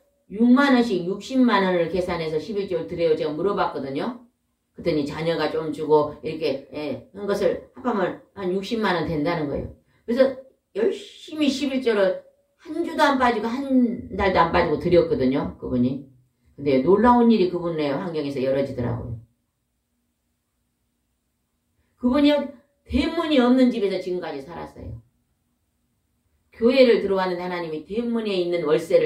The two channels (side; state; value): both; identical; correlation 1.00